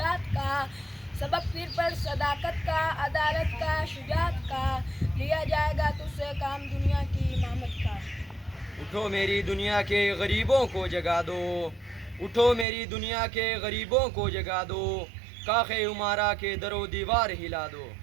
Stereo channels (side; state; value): left; drops out; at 12.7 s